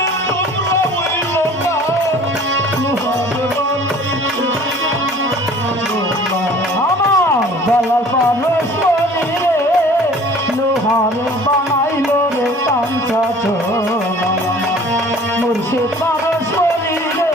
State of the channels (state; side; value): normal; both; correlation 0.48